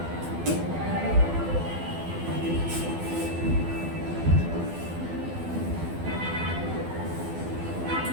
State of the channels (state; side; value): late; left; 12 ms